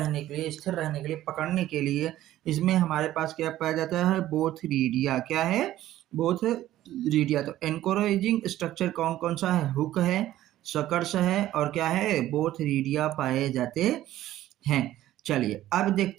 के लिए, स्थिर रहने के लिए, पकड़ने के लिए। इसमें हमारे पास क्या पाया जाता है, बोथरीडिया। क्या है, बोथरीडिया। तो एनकरेजिंग स्ट्रक्चर कौन कौन सा है, हुक है, सकर्स है और क्या है, बोथरीडिया पाए जाते हैं। चलिए अब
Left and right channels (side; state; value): left; quieter; 13.9 dB